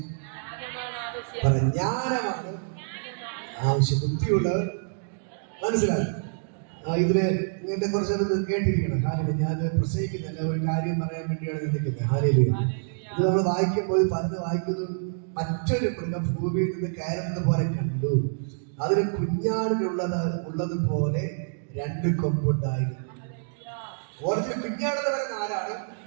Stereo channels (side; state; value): left; silent; digital silence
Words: ജ്ഞാനമാണ് ആവശ്യം. ബുദ്ധിയുള്ളവൻ മനസ്സിലാക്കും. ഇതില് ഇങ്ങനത്തെ കുറച്ചൊന്ന് കേട്ടിരിക്കണം. ഹല്ലേലൂയ. ഞാൻ പ്രസംഗിക്കുന്നില്ല, ഒരു കാര്യം പറയാൻ വേണ്ടിയാണ് നിൽക്കുന്നത്. ഹല്ലേലൂയ. ഇത് നമ്മൾ വായിക്കുമ്പോൾ പലത് വായിക്കുന്നു. മറ്റൊരു മൃഗം ഭൂമിയിൽ നിന്ന് കയറുന്നത് പോലെ കണ്ടു. അതിന് കുഞ്ഞാടിനുള്ളതുപോലെ 2 കൊമ്പുണ്ടായിരുന്നു. ഓരോ കുഞ്ഞാടെന്ന് പറയുന്ന ആരാണ്?